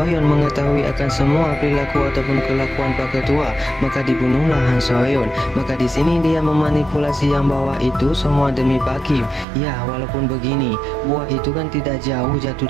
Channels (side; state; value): left; drops out; at 9.5 s